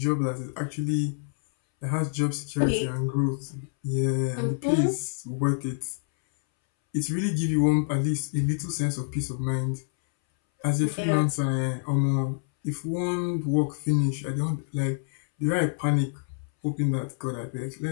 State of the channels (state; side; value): silent; right; 60 dB below the other